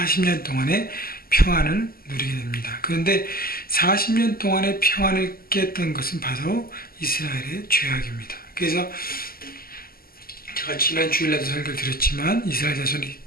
동안의 평안을 누리게 됩니다. 그런데 40년 동안의 평안을 깼던 것은 바로 이스라엘의 죄악입니다. 그래서 제가 지난 주일날도 설교를 드렸지만 이스라엘 자손이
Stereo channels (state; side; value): late; right; 0.43 ms